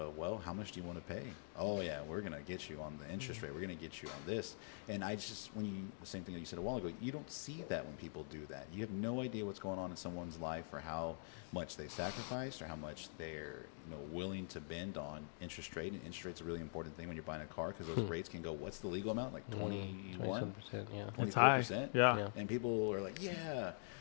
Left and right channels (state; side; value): silent; right; digital silence